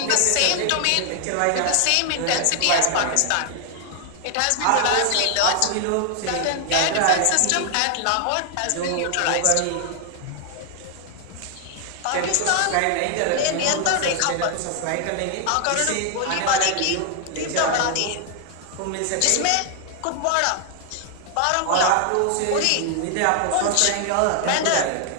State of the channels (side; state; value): both; different; correlation 0.00